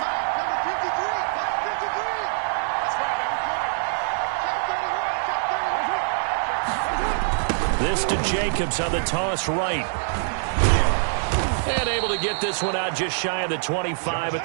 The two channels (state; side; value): silent; left; digital silence